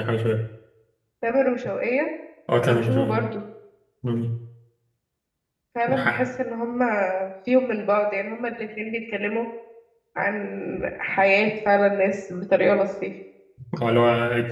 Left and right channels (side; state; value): both; identical; correlation 1.00